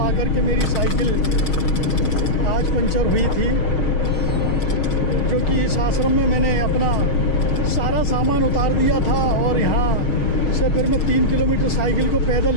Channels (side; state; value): right; late; 6.3 ms